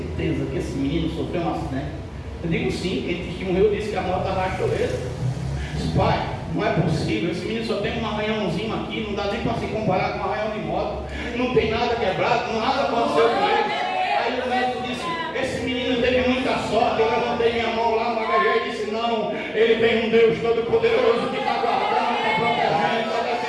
que esse menino sofreu um acidente? Eu digo sim, quem testemunhou disse que a moto arrastou ele. Disse: pai, não é possível, esse menino só tem um arranhãozinho aqui, não dá nem para se comparar com um arranhão de moto, não tem nada quebrado, nada aconteceu com ele. Aí o médico disse: esse menino teve muita sorte. Eu levantei minha mão lá no HG e disse: não, ele tem um Deus todo-poderoso que está guardando, está protegendo, está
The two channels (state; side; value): identical; both; correlation 1.00